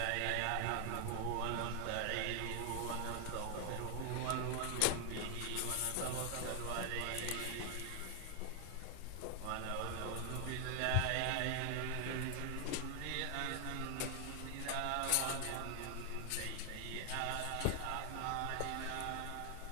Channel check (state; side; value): different; both; correlation 0.00